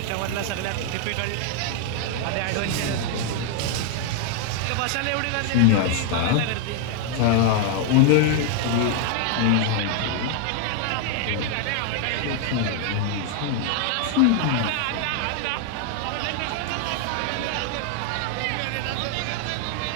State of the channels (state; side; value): different; both; correlation 0.00